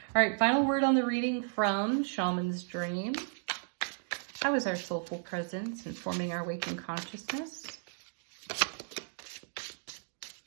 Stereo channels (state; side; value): silent; left; digital silence